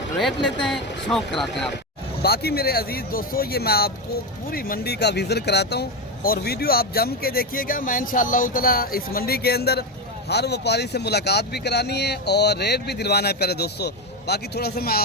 रेट लेते हैं, शौक़ कराते हैं आप। बाकी मेरे अजीज़ दोस्तों, ये मैं आपको पूरी मंडी का विजिट कराता हूँ और वीडियो आप जम के देखिएगा। मैं इंशाअल्लाह ताला इस मंडी के अंदर हर व्यापारी से मुलाकात भी करानी है और रेट भी दिलवाना है प्यारे दोस्तों। बाकी थोड़ा सा मैं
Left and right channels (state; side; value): normal; both; correlation 0.13